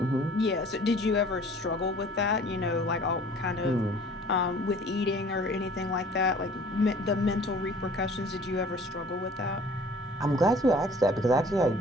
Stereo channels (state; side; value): normal; both; correlation 0.50